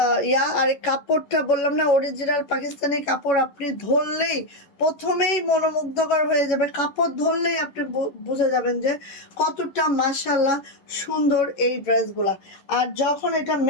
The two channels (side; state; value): right; late; 11 ms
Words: আর কাপড়টা বললাম না, অরিজিনাল পাকিস্তানি কাপড়, আপনি ধরলেই প্রথমেই মনোমুগ্ধকর হয়ে যাবে, কাপড় ধরলেই আপনি বুঝে যাবেন যে কতটা মাশাল্লাহ সুন্দর এই ড্রেসগুলা। আর যখন এটা